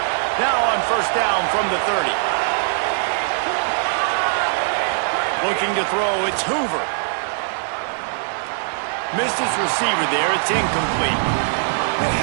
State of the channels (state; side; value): silent; left; digital silence